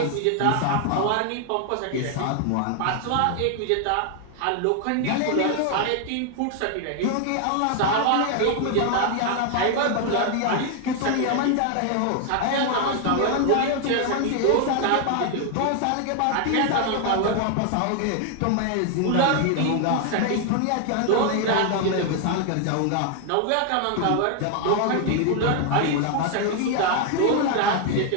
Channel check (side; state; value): both; different; correlation 0.00